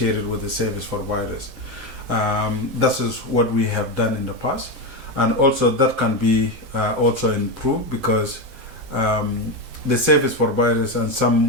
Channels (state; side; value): late; left; 7.7 ms